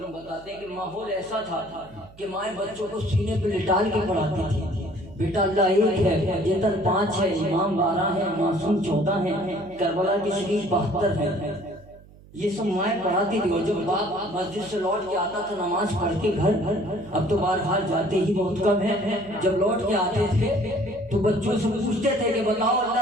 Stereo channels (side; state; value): right; noise; hum, 23 dB below the sound